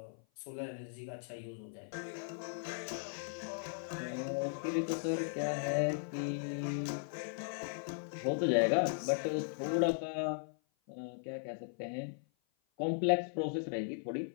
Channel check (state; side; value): silent; right; 53 dB below the other